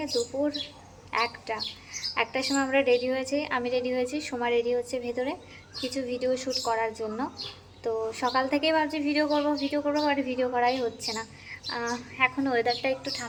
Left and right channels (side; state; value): both; identical; correlation 1.00